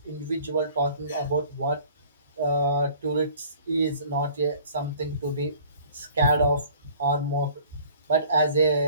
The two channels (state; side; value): inverted; both; correlation -0.52